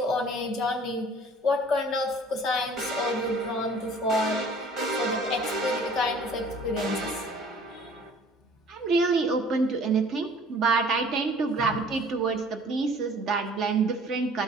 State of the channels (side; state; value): both; normal; correlation 0.51